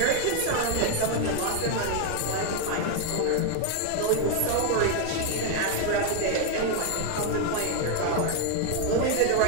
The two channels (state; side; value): different; both; correlation 0.01